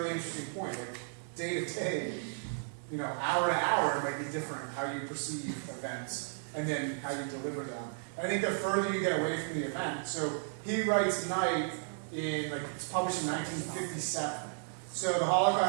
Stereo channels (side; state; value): left; silent; 55 dB below the other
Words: interesting point. Like, day to day, hour to hour, it might be different how you perceive events and then how you deliver them. I think the further you get away from the event, so he writes Night in, like, it's published in 1957. So the